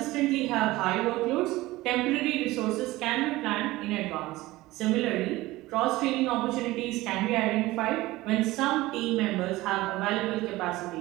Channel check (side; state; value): left; quieter; 18.6 dB